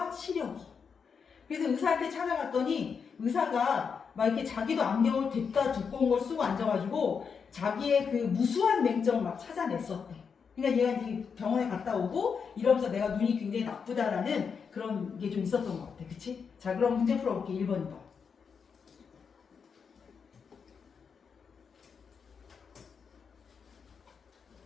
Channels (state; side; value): quieter; right; 6.1 dB